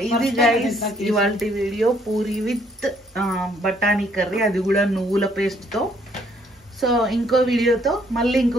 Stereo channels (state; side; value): normal; both; correlation 0.66